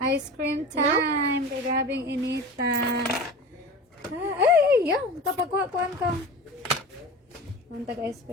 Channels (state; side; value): normal; both; correlation 0.33